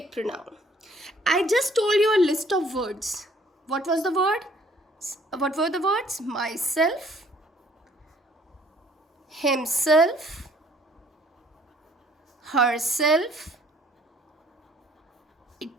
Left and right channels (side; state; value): both; normal; correlation 0.60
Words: pronoun. I just told you a list of words. What was the word? What were the words? Myself, himself, herself,